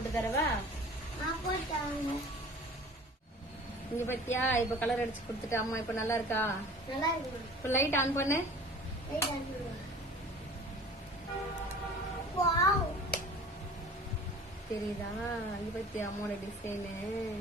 தரவா? போட்டாங்க. இங்க பத்தியா இப்ப கலர் அடிச்சு கொடுத்துட்டு அம்மா இப்ப நல்லா இருக்கா? நல்லா இருக்குமா? இப்ப லைட் ஆன் பண்ணு. லைட் ஆன் பண்ணு. வாவ், தெரியுதா? இங்க பத்தியா அம்மாவோட டிசைன்.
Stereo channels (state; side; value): normal; both; correlation 0.44